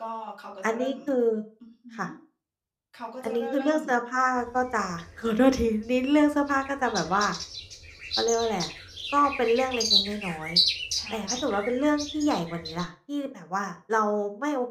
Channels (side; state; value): both; identical; correlation 1.00